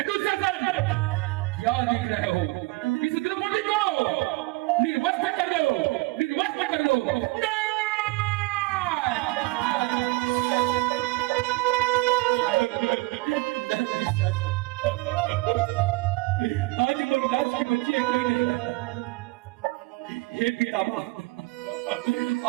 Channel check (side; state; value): left; quieter; 23.2 dB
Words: क्या देख रहे हो? इस द्रौपदी को निर्वस्त्र कर दो, निर्वस्त्र कर दो।